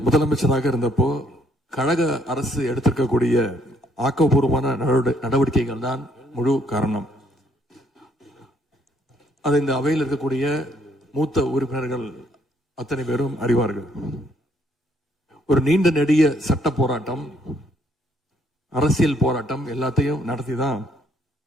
முதலமைச்சராக இருந்தப்போ கழக அரசு எடுத்திருக்கக்கூடிய ஆக்கப்பூர்வமான நடவடிக்கைகள் தான் முழு காரணம். அதை இந்த அவையில் இருக்கக்கூடிய மூத்த உறுப்பினர்கள் அத்தனை பேரும் அறிவார்கள். ஒரு நீண்ட நெடிய சட்ட போராட்டம், அரசியல் போராட்டம் எல்லாத்தையும் நடத்திதான்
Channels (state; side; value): normal; both; correlation 0.68